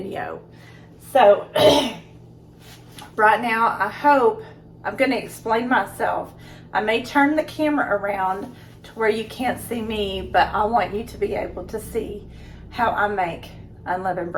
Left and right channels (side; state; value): both; identical; correlation 1.00